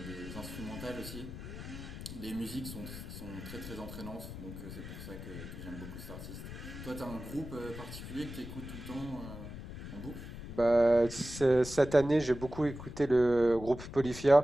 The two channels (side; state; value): left; noise; rumble, 10 dB below the sound